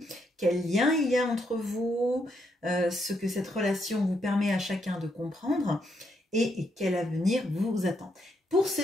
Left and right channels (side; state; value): both; normal; correlation 0.77